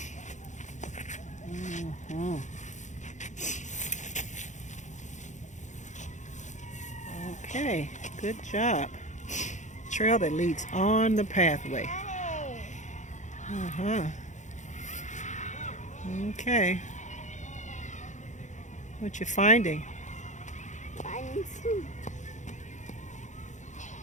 Okay, good job. Trail that leads on the pathway. Okay. What you finding? Finding some.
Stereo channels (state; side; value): late; right; 0.35 ms